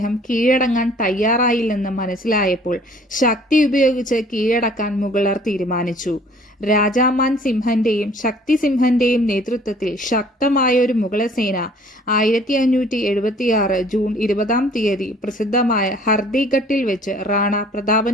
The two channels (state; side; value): normal; both; correlation 0.55